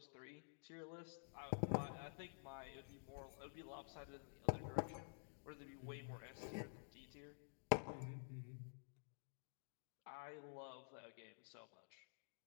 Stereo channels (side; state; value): right; silent; digital silence